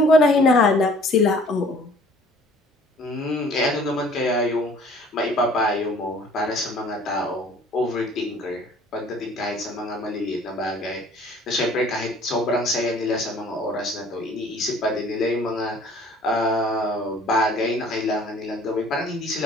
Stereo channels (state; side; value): normal; both; correlation 0.53